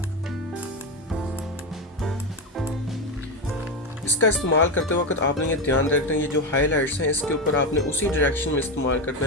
इसका इस्तेमाल करते वक्त आपने ये ध्यान रखना है, ये जो हाइलाइट्स हैं इसके ऊपर आपने उसी डायरेक्शन में इस्तेमाल करना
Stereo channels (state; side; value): normal; both; correlation 0.13